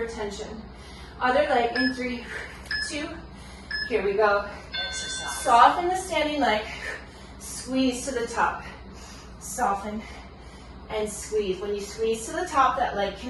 tension. Other leg in 3, 2. Here we go. Exercise. Soften the standing leg. Squeeze to the top. Soften and squeeze. When you squeeze to the top, that leg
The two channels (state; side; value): identical; both; correlation 1.00